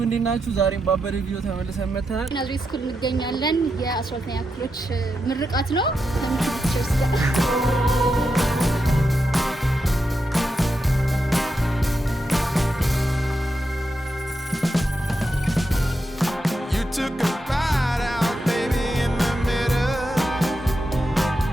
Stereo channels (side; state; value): both; normal; correlation 0.86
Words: እንዴት ናችሁ? ዛሬም ባበደ ቪዲዮ ተመልሰን መጥተናል። ናዝሬት ስኩል እንገኛለን። የ12ኛ ክፍሎች ምርቃት ነው። ለምትችርስ ጋር